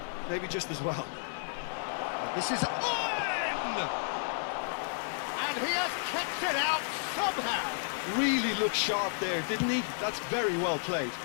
maybe just as well. This is Owen! And he has kept it out somehow. Really looked sharp there, didn't he? That's very well played.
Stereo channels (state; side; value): silent; right; digital silence